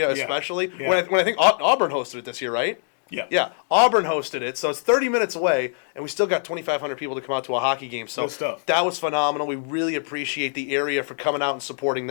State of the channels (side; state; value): right; silent; digital silence